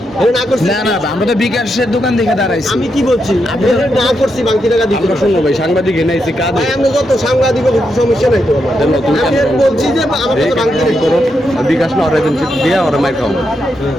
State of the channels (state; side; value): normal; both; correlation 0.83